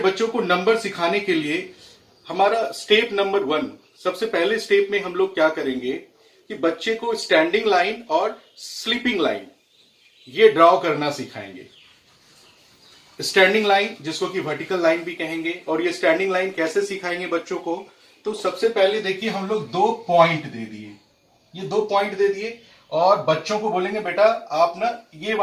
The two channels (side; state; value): both; identical; correlation 1.00